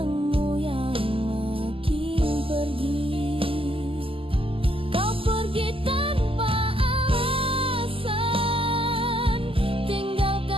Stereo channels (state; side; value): late; left; 0.26 ms